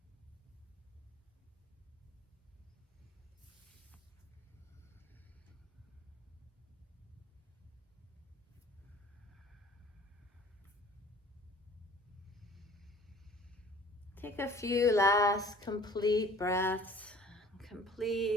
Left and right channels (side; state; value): both; normal; correlation 0.50